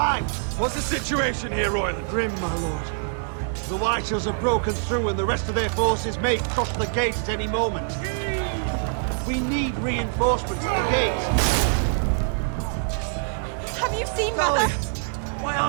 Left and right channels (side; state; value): left; silent; 62 dB below the other